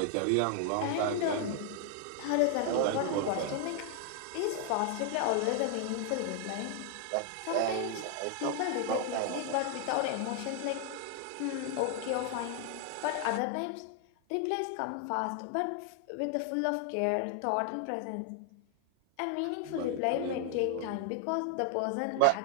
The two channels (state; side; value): different; both; correlation 0.00